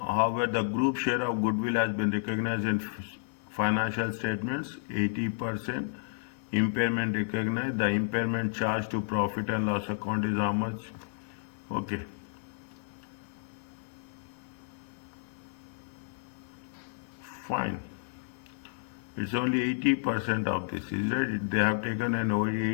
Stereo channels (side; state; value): right; silent; digital silence